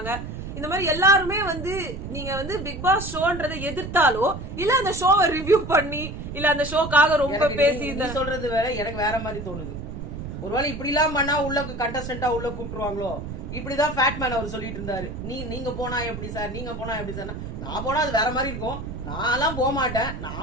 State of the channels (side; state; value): right; noise; rumble, 8 dB below the sound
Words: இந்த மாதிரி எல்லாருமே வந்து நீங்க வந்து பிக் பாஸ் ஷோன்றதை எதிர்த்தாலோ இல்ல அந்த ஷோவை ரிவ்யூ பண்ணி இல்ல அந்த ஷோக்காக ரொம்ப பேசி சொல்றது வேற, எனக்கு வேற மாதிரி தோணுது. ஒருவேளை இப்படி எல்லாம் பண்ணா உள்ள கண்டஸ்டன்டா உள்ள கூப்பிட்டுருவாங்களோ. இப்படிதான் ஃபேட்மேன் அவர் சொல்லிட்டு இருந்தாரு, நீங்க போனா எப்படி சார், நீங்க போனா எப்படி சார், நான் போனா அது வேற மாதிரி இருக்கும், நான் எல்லாம் போக மாட்டேன்,